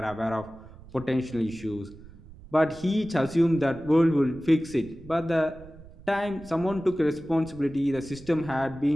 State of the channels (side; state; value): right; noise; rumble, 20 dB below the sound